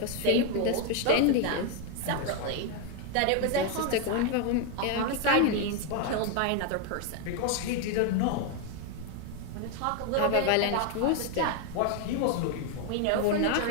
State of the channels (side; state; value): both; different; correlation 0.01